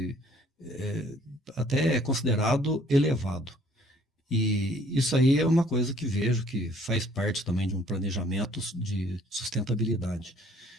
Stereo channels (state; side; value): normal; both; correlation 0.59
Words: até é considerado elevado. E isso aí é uma coisa que vejo que faz parte também de um planejamento de sustentabilidade.